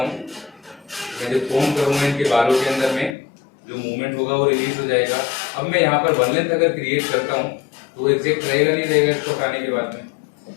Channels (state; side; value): drops out; right; at 3.2 s